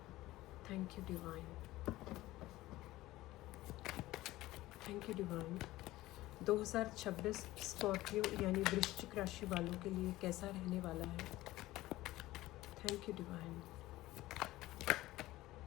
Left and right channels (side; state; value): right; quieter; 17.2 dB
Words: Thank you divine, thank you divine. 2026 Scorpio यानी वृश्चिक राशि वालों के लिए कैसा रहने वाला है। Thank you divine.